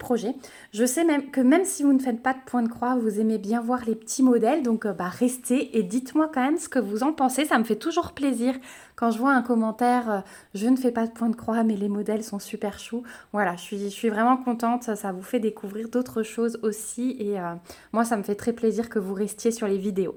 Je sais même que même si vous ne faites pas de point de croix, vous aimez bien voir les petits modèles. Donc restez et dites-moi quand même ce que vous en pensez. Ça me fait toujours plaisir quand je vois un commentaire, je ne fais pas de point de croix, mais les modèles sont super choux. Voilà, je suis vraiment contente. Ça vous fait découvrir d'autres choses aussi. Et moi, ça me fait très plaisir que vous restiez sur les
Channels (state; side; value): identical; both; correlation 1.00